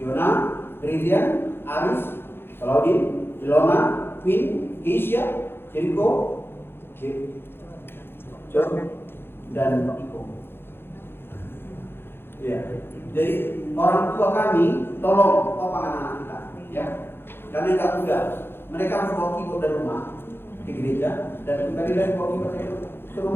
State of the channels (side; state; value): right; late; 0.11 ms